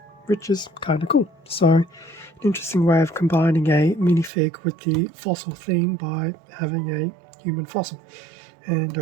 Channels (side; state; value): left; drops out; at 4.3 s